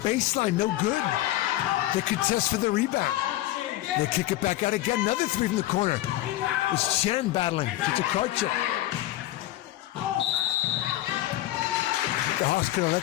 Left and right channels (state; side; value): quieter; right; 15.5 dB